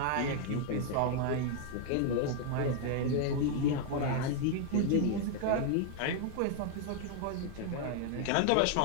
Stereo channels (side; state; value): both; different; correlation 0.00